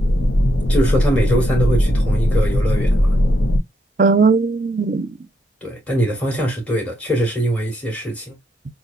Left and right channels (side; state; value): both; normal; correlation 0.78